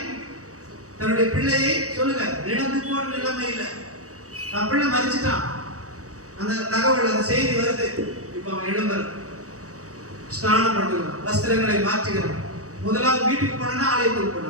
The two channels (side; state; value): left; late; 0.66 ms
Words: தன்னுடைய பிள்ளையை சொல்லுங்க, இழந்து போன நிலைமை இல்லை, தன் பிள்ளை மரிச்சிட்டான். அந்த தகவல், அந்த செய்தி வருது. இப்ப அவன் எழும்புறான், ஸ்நானம் பண்ணுகிறான், வஸ்திரங்களை மாற்றுகிறான். முதலாவது வீட்டுக்கு போனா ஆலயத்துக்கு